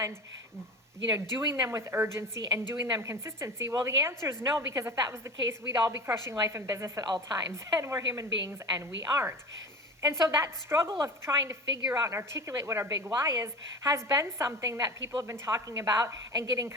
doing them with urgency and doing them consistency? Well, the answer is no, because if that was the case, we'd all be crushing life and business at all times, and we're human beings and we aren't. And so that struggle of trying to figure out and articulate what our big why is has been something that people have been talking about and getting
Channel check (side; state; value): both; normal; correlation 0.32